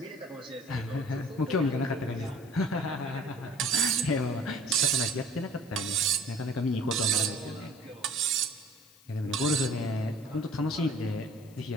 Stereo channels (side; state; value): left; noise; hiss, 26 dB below the sound